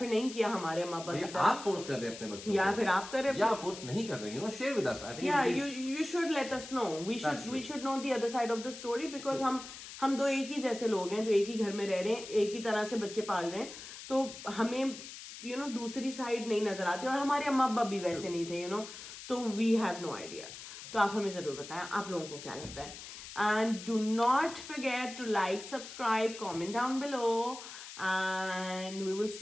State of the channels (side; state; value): left; noise; hiss, 12 dB below the sound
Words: नहीं किया हमारे अम्मा अब्बा की तरह. आप फोर्स कर रहे हैं अपने बच्चों को या फिर आप कर रहे हैं या फोर्स नहीं कर रहे हैं. Share with us. I think you should let us know. We should know the other side of the story because हम दो एक ही जैसे लोग हैं जो एक ही घर में रह रहे हैं, एक ही तरह से बच्चे पाल रहे हैं, तो हमें दूसरी साइड नहीं नजर आती और हमारे अम्मा अब्बा भी वैसे नहीं थे तो वी हैव नो आइडिया. तो आप हमें जरूर बताएं आप लोगों को क्या लगता है. And do not forget to like, subscribe, comment down below and we will